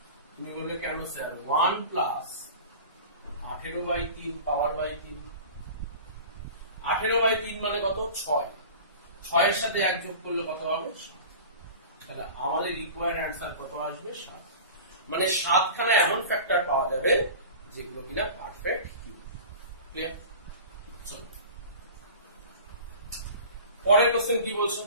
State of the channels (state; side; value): inverted; both; correlation -0.37